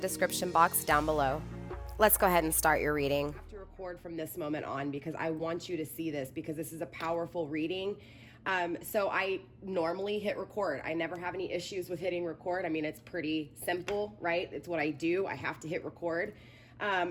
box down below. Let's go ahead and start your reading. I have to record from this moment on because I want you to see this because this is a powerful reading. So I normally hit record. I never have any issues with hitting record. I mean, it's pretty simple, right? It's what I do. I have to hit record.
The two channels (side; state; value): both; identical; correlation 1.00